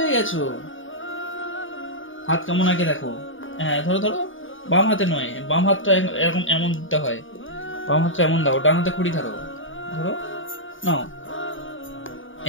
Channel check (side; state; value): right; late; 0.57 ms